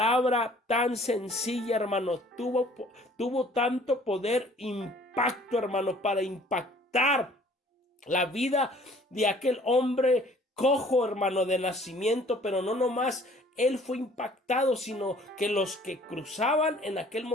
tan sencilla, hermano, tuvo tanto poder, impacto, hermano, para impactar la vida de aquel hombre cojo, hermano, de nacimiento. Pero no nomás él fue impactado, sino que los que cruzaban en aquel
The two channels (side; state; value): both; normal; correlation 0.55